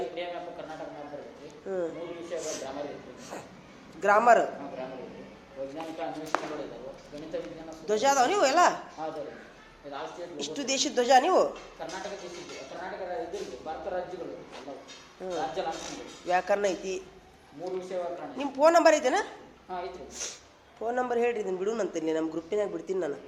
ಕರ್ನಾಟಕ ಮ್ಯಾಪ್ ಬರ್ತೈತಿ. ಹ್ಞೂ, 3 ವಿಷಯಗಳ ಗ್ರಾಮರ್ ಇರ್ತೈತಿ. ಗ್ರಾಮರ್, ಗ್ರಾಮರ್ ಇರ್ತೈತಿ. ವೈಜ್ಞಾನಿಕ ಅನ್ವೇಷಣೆಗಳು ಇದಾವೆ. ಗಣಿತ ವಿಜ್ಞಾನ ಧ್ವಜ ಅದಾವ ನೀವು ಎಲ್ಲ ಹೌದು. ಇದು ಆಸ್ತಿ ಇಷ್ಟು ದೇಶದ ಧ್ವಜ ನೀವು. ಕರ್ನಾಟಕ ದೇಶದ್ದು, ಕರ್ನಾಟಕ ಇದು ಭಾರತ ರಾಜ್ಯಗಳು ಎಲ್ಲವು. ರಾಜ್ಯ ಲಾಂಛನಗಳು, ವ್ಯಾಕರಣ ಐತಿ. 3 ವಿಷಯಗಳ ಕಾರಣ. ನಿಮ್ಮ ಫೋನ್ ನಂಬರ್ ಐತೆನಾ? ಹಾಂ ಐತ್ರಿ. ಫೋನ್ ನಂಬರ್ ಹೇಳ್ರಿ, ಇದನ್ನು ಬಿಡುನಂತೀನಿ, ನಮ್ಮ ಗ್ರೂಪಿನಾಗ ಬಿಡ್ತೀನಿ ನಾನು.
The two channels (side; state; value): both; identical; correlation 1.00